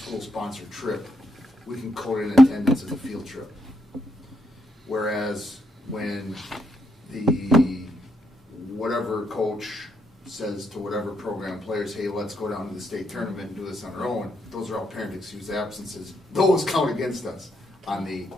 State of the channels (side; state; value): both; normal; correlation 0.78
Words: trip, we can code in attendance as a field trip. Whereas when the whatever coach says to whatever program players, hey, let's go down to the state tournament and do this on our own, those are all parent excused absences. Those count against us on the